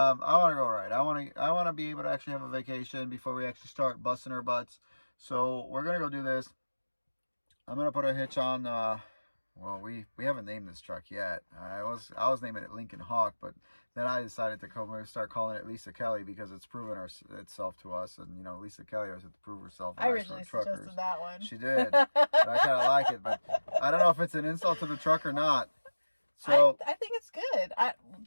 want to go ride. I want to be able to actually have a vacation before we actually start busting our butts. So we're gonna go do this. I'm gonna put a hitch on. Well, we haven't named this truck yet. I was naming it Lincoln Hawk, but then I decided to start calling it Lisa Kelly, because it's proven itself to us. And Lisa Kelly always had to prove herself. I originally suggested that one. She did. But I kind of like it, but I don't know if it's an insult to the truck or not. So I think it's good.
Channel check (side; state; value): both; inverted; correlation -1.00